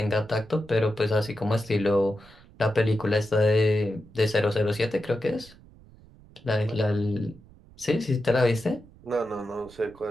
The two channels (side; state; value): right; noise; rumble, 24 dB below the sound